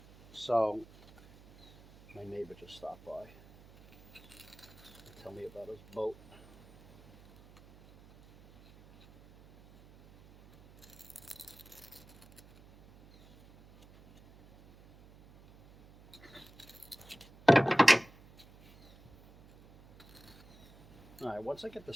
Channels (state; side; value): noise; right; hum, 23 dB below the sound